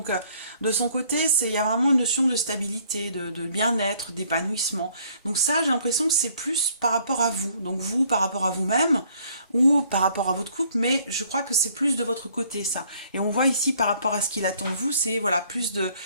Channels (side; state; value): both; inverted; correlation -0.62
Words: de son côté, il y a vraiment une notion de stabilité, de bien-être, d'épanouissement. Donc ça, j'ai l'impression que c'est plus par rapport à vous, donc vous par rapport à vous-même, ou par rapport à votre couple, mais je crois que c'est plus de votre côté, ça. Et on voit ici, par rapport à ce qu'il attend de vous, c'est voilà, plus de